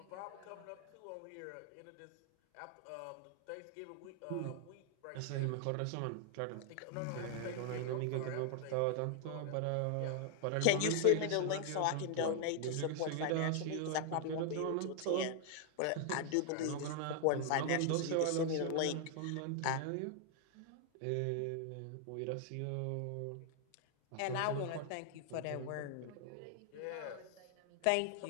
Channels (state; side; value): different; both; correlation 0.00